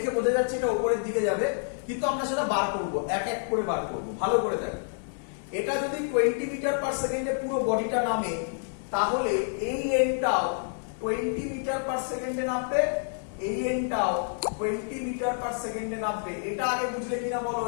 বোঝা যাচ্ছে এটা উপরের দিকে যাবে, কিন্তু আমরা সেটা বার করব, এক এক করে বার করব। ভালো করে দেখো, এটা যদি 20 মিটার পার সেকেন্ডে পুরো বডিটা নামে, তাহলে এই এন্ডটাও 20 মিটার পার সেকেন্ডে নামবে, এই এন্ডটাও 20 মিটার পার সেকেন্ডে নামবে। এটা আগে বুঝলে কিনা বলো?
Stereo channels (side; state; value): right; silent; digital silence